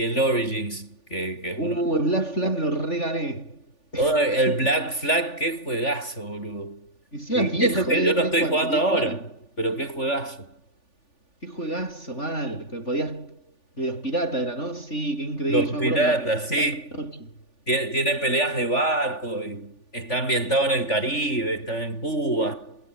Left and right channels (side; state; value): right; late; 3.4 ms